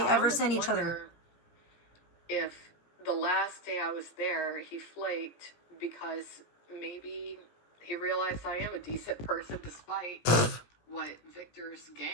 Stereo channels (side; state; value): right; late; 17 ms